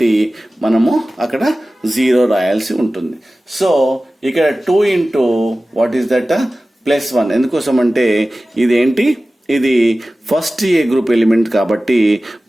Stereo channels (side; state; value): both; normal; correlation 0.96